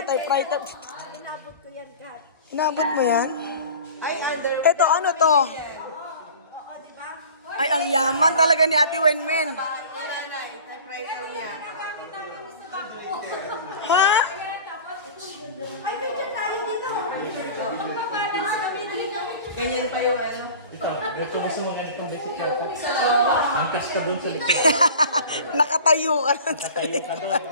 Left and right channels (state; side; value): inverted; both; correlation -0.41